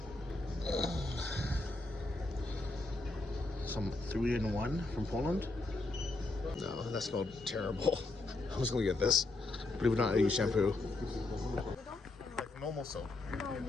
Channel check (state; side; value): quieter; right; 3.0 dB